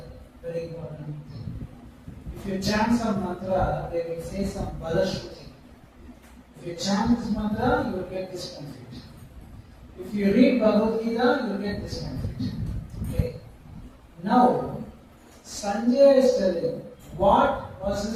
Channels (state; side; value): identical; both; correlation 1.00